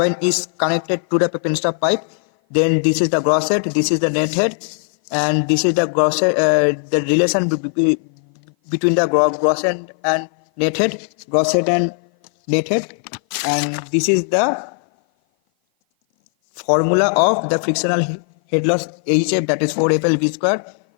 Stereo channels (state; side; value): silent; right; 56 dB below the other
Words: is connected to the penstock pipe. Then this is the gross head, this is the net head, and this is the gross head, the relation between the gross head and net head, gross head and net head, and this is the formula of the frictional head loss HF, that is 4FL V square